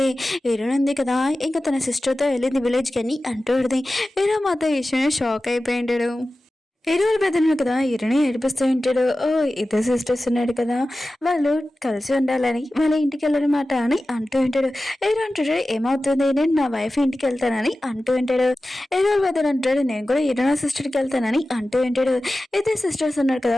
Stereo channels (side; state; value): both; normal; correlation 0.95